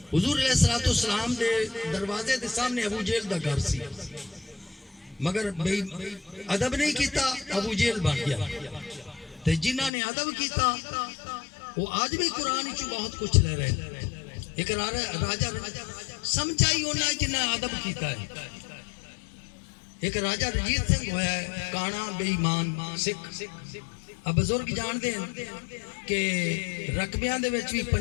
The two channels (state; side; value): drops out; right; at 9.9 s